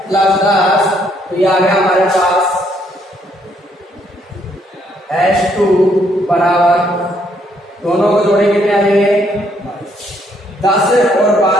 प्लस 10, तो ये आ गया हमारे पास s2 बराबर, दोनों को जोड़े कितने आ जाएंगे 10 और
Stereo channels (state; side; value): normal; both; correlation 0.70